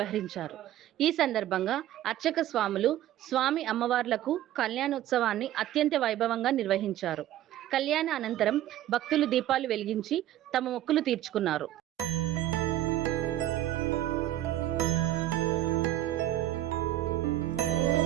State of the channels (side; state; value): left; quieter; 13.2 dB